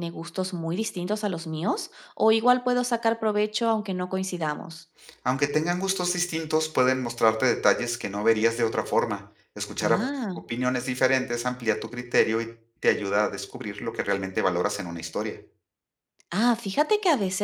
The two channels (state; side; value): identical; both; correlation 1.00